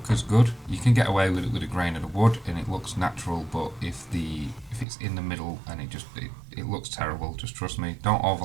as good. You can get away with it with a grain of the wood and it looks natural, but if it's in the middle and it looks terrible, just trust me, don't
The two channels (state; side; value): drops out; left; at 4.9 s